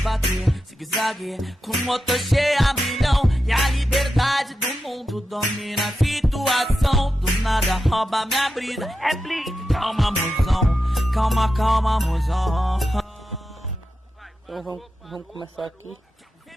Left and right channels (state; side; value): normal; both; correlation 0.89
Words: zigue-zague, com motor cheio a milhão, e a liberdade do mundo domina a situação, do nada rouba minha brisa, é blitz, calma, mozão, calma, calma, mozão. Então vamos começar aqui.